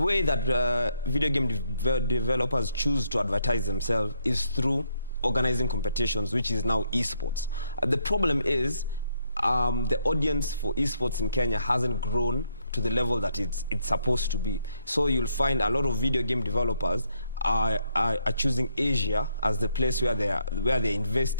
that video game developers choose to advertise themselves is through organizing competitions, which is now esports. The problem is the audience for esports in Kenya hasn't grown to the level that it's supposed to be. So you'll find a lot of video game developers are choosing Asia as the place where they're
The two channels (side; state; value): both; inverted; correlation -0.75